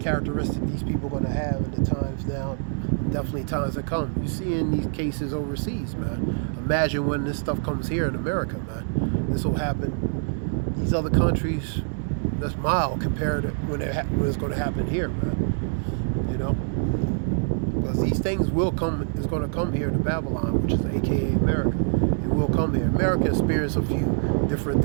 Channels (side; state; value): left; silent; 62 dB below the other